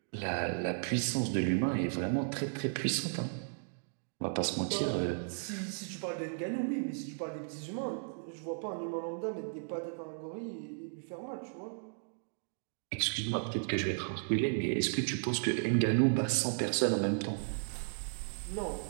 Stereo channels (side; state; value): left; silent; digital silence